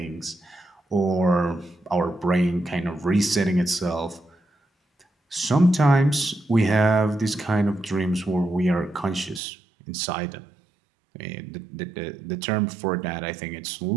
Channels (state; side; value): drops out; left; at 9.4 s